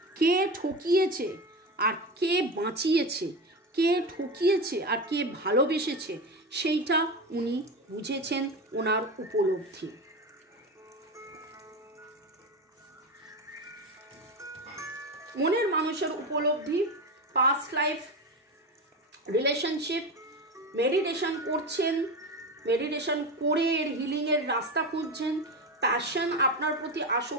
কে ঠকিয়েছে আর কে বাঁচিয়েছে, কে ঠকিয়েছে আর কে ভালোবেসেছে, সেইটা উনি বুঝেছেন, ওনার উপলব্ধি। মনের মানুষের উপলব্ধি, পাস্ট লাইফ, রিলেশনশিপ, মেডিটেশন করছেন, মেডিটেশন করে এর হিলিংয়ের রাস্তা খুঁজছেন, প্যাশন, আপনার প্রতি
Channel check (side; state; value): both; normal; correlation 0.21